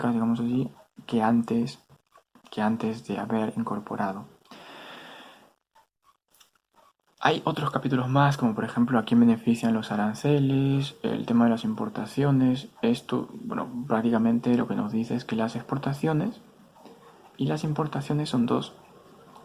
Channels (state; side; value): identical; both; correlation 1.00